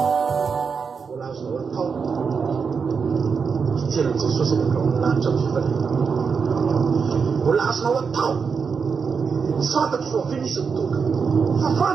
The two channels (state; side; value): quieter; left; 5.7 dB